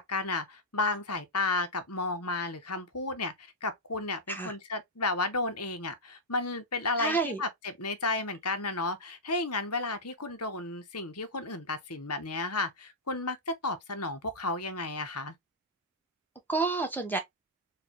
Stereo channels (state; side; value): normal; both; correlation -0.05